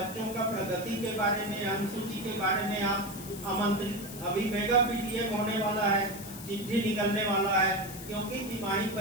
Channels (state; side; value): noise; left; hiss, 13 dB below the sound